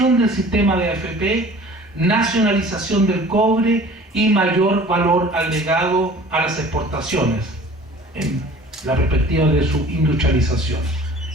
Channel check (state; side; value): normal; both; correlation 0.46